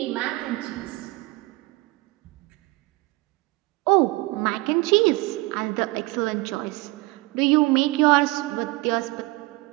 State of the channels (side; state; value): left; quieter; 22.7 dB